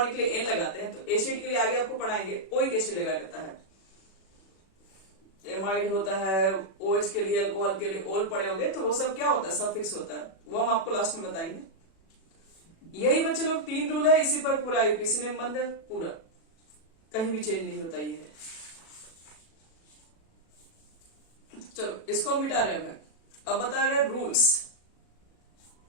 के लिए एन लगाते हैं तो एसिड के लिए आगे आपको पढ़ाएंगे ओइक एसिड लगाया जाता है। एमाइड होता है, OH के लिए, अल्कोहल के लिए ओल पड़े होंगे, तो वो सब क्या होता है, सफिक्स होता है, वो हम आपको लास्ट में बताएंगे। यही बच्चे लोग 3 रूल है, इसी पर पूरा यूपीसी में बंद है, पूरा कहीं भी चेंज नहीं होता ये है। चलो इसको मिटा रहे हैं, अब बता रहे rules.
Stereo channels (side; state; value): right; late; 36 ms